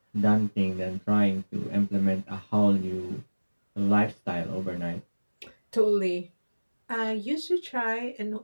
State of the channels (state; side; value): inverted; both; correlation -1.00